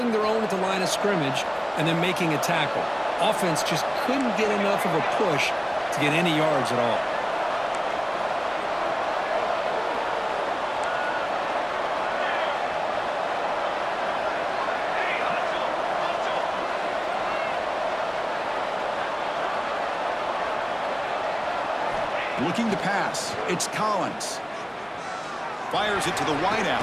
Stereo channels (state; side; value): identical; both; correlation 1.00